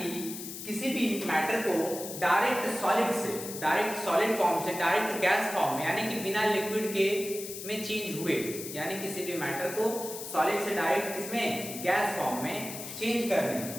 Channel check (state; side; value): noise; left; hiss, 9 dB below the sound